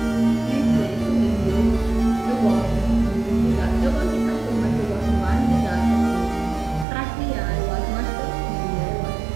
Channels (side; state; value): left; drops out; at 6.9 s